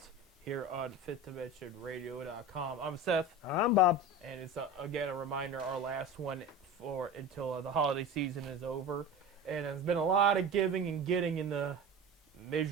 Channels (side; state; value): both; normal; correlation 0.31